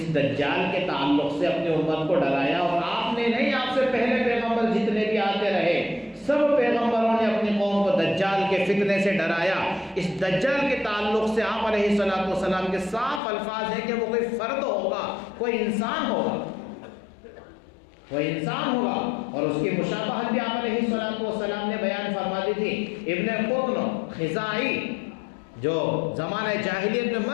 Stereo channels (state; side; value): drops out; right; at 13.2 s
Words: دجال کے تعلق سے اپنی امت کو ڈرایا، اور آپ نے نہیں، آپ سے پہلے پیغمبر جتنے بھی آتے رہے سب پیغمبروں نے اپنی قوم کو دجال کے فتنے سے ڈرایا۔ اس دجال کے تعلق سے آپ علیہ السلام کے صاف الفاظ ہیں کہ وہ کوئی فرد ہوگا، کوئی انسان ہوگا، کوئی انسان ہوگا، اور اس کی مشابہت بھی آپ علیہ السلام نے بیان فرما دی تھی۔ ابن قطن خزاعی جو زمانہ جاہلیت میں